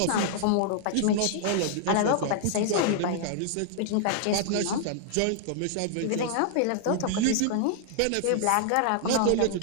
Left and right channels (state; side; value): different; both; correlation -0.01